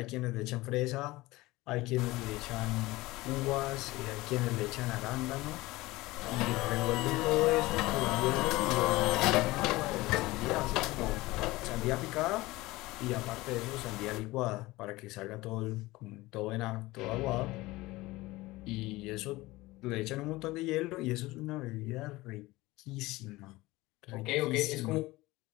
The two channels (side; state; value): right; quieter; 19.9 dB